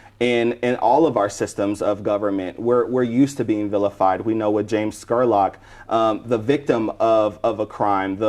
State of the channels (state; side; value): identical; both; correlation 1.00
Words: in all of our systems of government. We're used to being vilified. We know with James Scurlock, the victim of a crime,